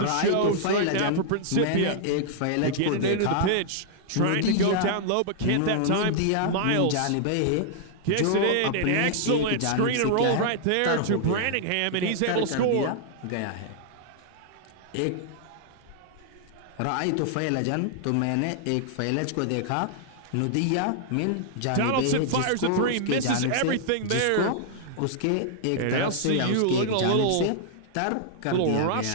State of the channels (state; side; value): different; both; correlation -0.01